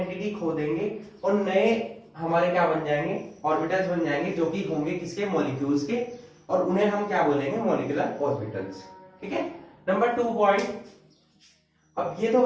खो देंगे और नए हमारे क्या बन जाएंगे, ऑर्बिटल्स बन जाएंगे जो कि होंगे किसके, मॉलिक्यूल्स के, और उन्हें हम क्या बोलेंगे, मॉलिक्यूलर ऑर्बिटल्स। ठीक है, नंबर 2 पॉइंट। अब ये तो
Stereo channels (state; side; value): identical; both; correlation 1.00